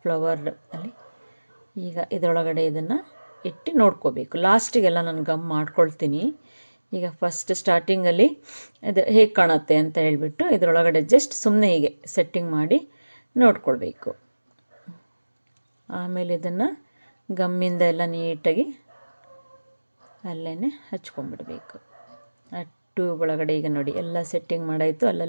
ಫ್ಲವರ್ ಅಲ್ಲಿ, ಈಗ ಇದರೊಳಗಡೆ ಇದನ್ನು ಇಟ್ಟು ನೋಡ್ಕೋಬೇಕು. ಲಾಸ್ಟಿಗೆಲ್ಲ ನಾನು ಗಮ್ ಮಾಡ್ಕೊಳ್ತೀನಿ. ಈಗ ಫಸ್ಟ್ ಸ್ಟಾರ್ಟಿಂಗಲ್ಲಿ ಇದು ಹೇಗೆ ಕಾಣುತ್ತೆ ಅಂತ ಹೇಳಿಬಿಟ್ಟು ಇದರೊಳಗಡೆ ಜಸ್ಟ್ ಸುಮ್ಮನೆ ಹೀಗೆ ಸೆಟ್ಟಿಂಗ್ ಮಾಡಿ ನೋಡ್ಕೊಳ್ಬೇಕು. ಆಮೇಲೆ ಇದನ್ನು ಗಮ್ಮಿಂದ ಎಲ್ಲ ನೀಟಾಗಿ ಅಲ್ಲೇ ಹಚ್ಕೊಂಡ್ಬಿಡ್ಬೇಕು. ಟ್ಯೂಬ್ ಒಳಗಡೆ ಈಗ ನೋಡಿ ಎಲ್ಲ ಸೆಟ್ಟಿಂಗ್ ಮಾಡಾಯಿತು.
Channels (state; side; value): inverted; both; correlation -1.00